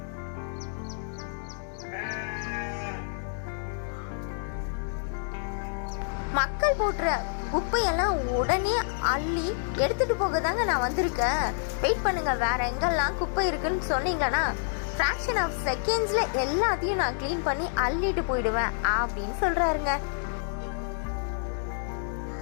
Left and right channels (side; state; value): right; silent; 59 dB below the other